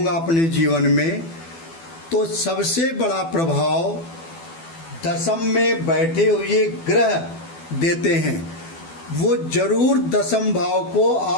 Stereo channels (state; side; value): late; right; 12 ms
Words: अपने जीवन में, तो सबसे बड़ा प्रभाव दशम में बैठे हुए ग्रह देते हैं। वो जरूर दशम भाव को,